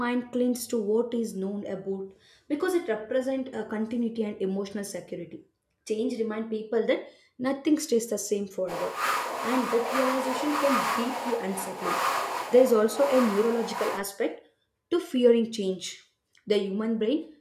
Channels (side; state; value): both; identical; correlation 1.00